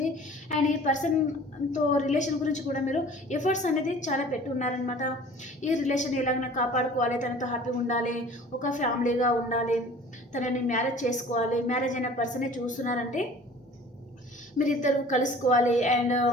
అండ్ ఈ పర్సన్తో రిలేషన్ గురించి కూడా మీరు ఎఫర్ట్స్ అనేది చాలా పెట్టి ఉన్నారనమాట. ఈ రిలేషన్ ఎలాగైనా కాపాడుకోవాలి, తనతో హ్యాపీగా ఉండాలి, ఒక ఫ్యామిలీగా ఉండాలి, తనని మ్యారేజ్ చేసుకోవాలి, మ్యారేజ్ అయిన పర్సనే చూస్తున్నారంటే మీరిద్దరు కలుసుకోవాలి. అండ్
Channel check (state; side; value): normal; both; correlation 0.47